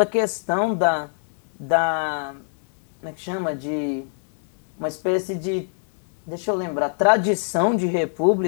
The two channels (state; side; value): silent; right; 63 dB below the other